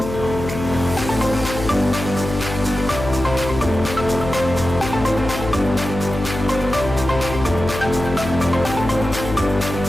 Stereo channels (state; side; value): noise; left; hum, 7 dB below the sound